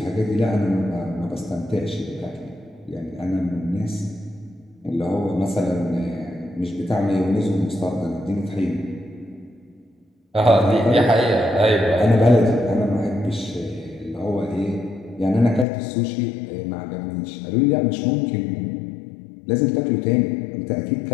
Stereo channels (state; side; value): drops out; right; at 15.7 s